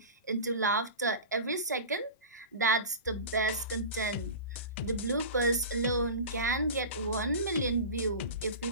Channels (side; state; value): both; inverted; correlation -0.31